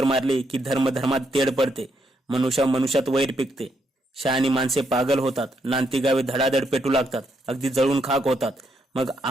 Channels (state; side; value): normal; both; correlation 0.77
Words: मारली की धर्म धर्मात तेढ पडते, मनुष्या मनुष्यात वैर पिकते. शहाणी माणसे पागल होतात. नांती गावे धडाधड पेटू लागतात, अगदी जळून खाक होतात. मग